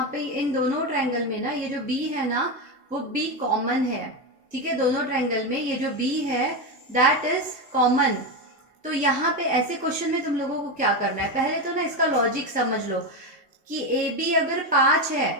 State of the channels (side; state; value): both; normal; correlation 0.13